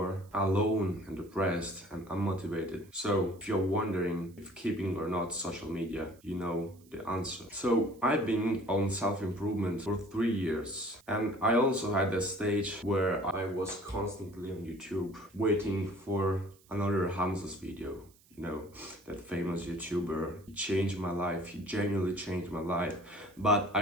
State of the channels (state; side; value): noise; right; hiss, 29 dB below the sound